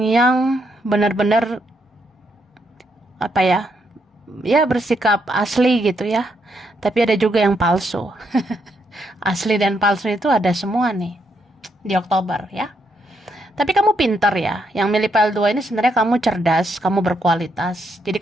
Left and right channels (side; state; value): both; normal; correlation 0.77